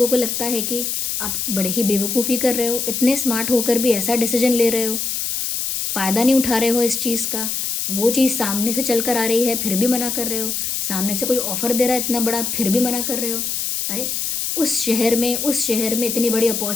को लगता है कि आप बड़े ही बेवकूफ़ी कर रहे हो, इतने स्मार्ट होकर भी ऐसा डिसीजन ले रहे हो, फ़ायदा नहीं उठा रहे हो इस चीज़ का। वो चीज़ सामने से चल कर आ रही है फिर भी मना कर रहे हो, सामने से कोई ऑफ़र दे रहा है इतना बड़ा फिर भी मना कर रहे हो। अरे उस शहर में इतनी बड़ी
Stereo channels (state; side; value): noise; left; hiss, 1 dB below the sound